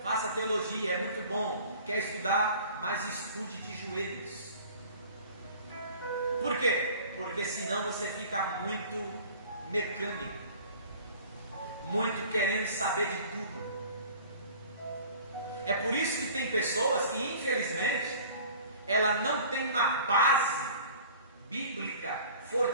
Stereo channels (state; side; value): inverted; both; correlation -0.46